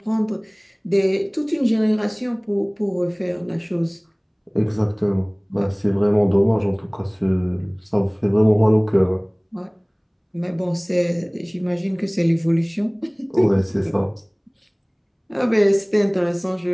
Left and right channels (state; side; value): identical; both; correlation 1.00